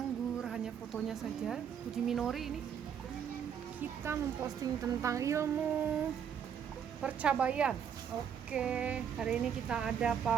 hanya fotonya saja. Puji Minori ini kita memposting tentang ilmu percabaian. Oke, hari ini kita ada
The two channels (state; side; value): quieter; left; 8.1 dB